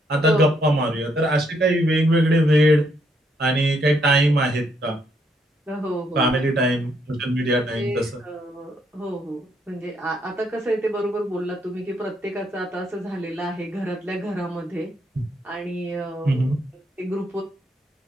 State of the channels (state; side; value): normal; both; correlation 0.73